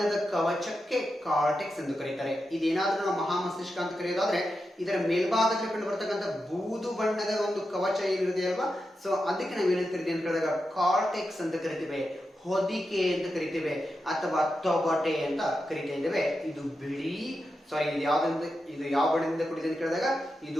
ಕವಚಕ್ಕೆ ಕಾರ್ಟೆಕ್ಸ್ ಎಂದು ಕರೀತಾರೆ. ಇದೇನಾದ್ರೂ ನಾವು ಮಹಾಮಸ್ತಿಷ್ಕ ಅಂತ ಕರೆಯೋದಾದ್ರೆ ಇದರ ಮೇಲ್ಭಾಗದಲ್ಲಿ ಕಂಡು ಬರ್ತಕ್ಕಂಥ ಬೂದು ಬಣ್ಣದ ಒಂದು ಕವಚ ಏನಿದೆ ಅಲ್ವಾ, ಸೊ ಅದಕ್ಕೆ ನಾವು ಏನಂತ ಕರಿತೀವಿ ಅಂತ ಕೇಳಿದಾಗ ಕಾರ್ಟೆಕ್ಸ್ ಅಂತ ಕರಿತೀವಿ, ಹೊದಿಕೆ ಅಂತ ಕರಿತೇವೆ, ಅಥವಾ ತೊಗಟೆ ಅಂತ ಕರಿತಾ ಇದ್ದೇವೆ. ಇದು ಬಿಳಿ ಇದು ಯಾವ ಬಣ್ಣದಿಂದ ಕೂಡಿದೆ ಅಂತ ಕೇಳಿದಾಗ ಇದು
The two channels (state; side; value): normal; both; correlation 0.89